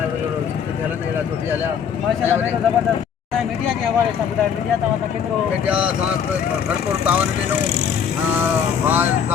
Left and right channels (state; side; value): quieter; right; 7.6 dB